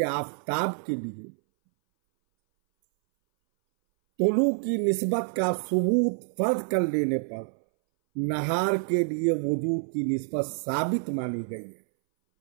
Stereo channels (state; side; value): silent; left; 60 dB below the other